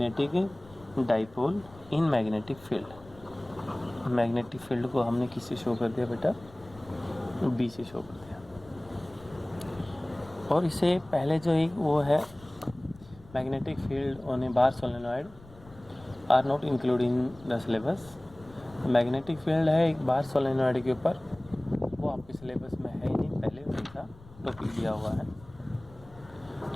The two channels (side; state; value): left; noise; rumble, 22 dB below the sound